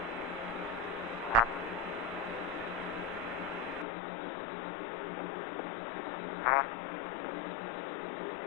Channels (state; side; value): drops out; right; at 3.9 s